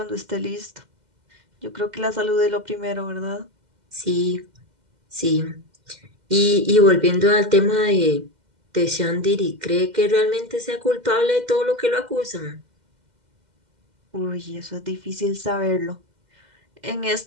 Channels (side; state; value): left; late; 2.0 ms